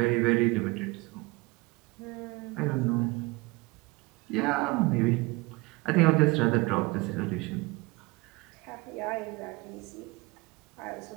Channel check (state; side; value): quieter; left; 23.4 dB